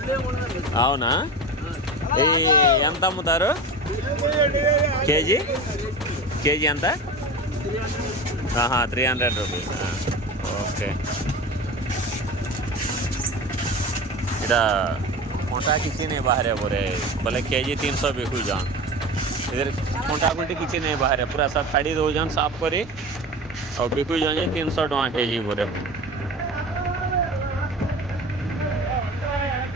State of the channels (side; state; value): both; normal; correlation 0.31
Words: అవునా? ఈ ఎంత అమ్ముతారు కేజీ? కేజీ ఎంత? 300 रुपीस. ओके. इधर कोंटा किसी नहीं बाहर है बोले बोले केजी 300 बिकू जान. इधर कोंटा कोंटे किसी नहीं बाहर है पूरा सब खरीद हो जान साफ करी और बिकू जाए 300 टका केजी बोले.